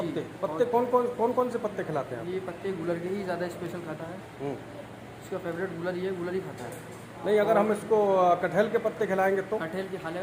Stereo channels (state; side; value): identical; both; correlation 1.00